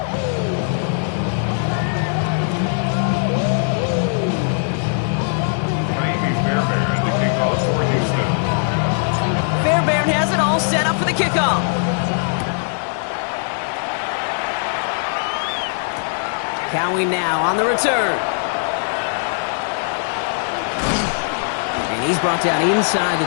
Fairbairn to kick off for Houston. Fairbairn has it all set up for the kickoff. Cowing now on the return. And he's brought down inside the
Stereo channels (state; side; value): silent; right; digital silence